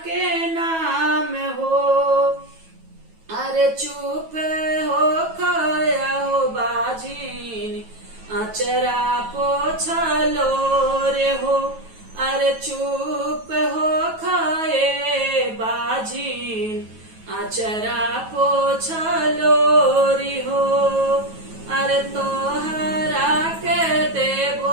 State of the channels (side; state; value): left; late; 9.2 ms